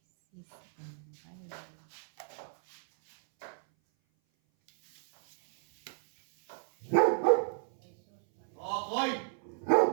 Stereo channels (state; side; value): silent; left; 57 dB below the other